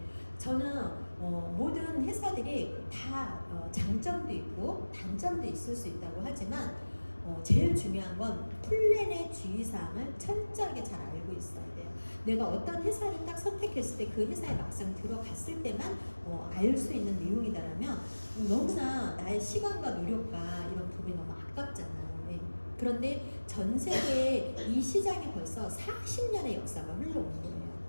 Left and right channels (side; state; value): both; inverted; correlation -1.00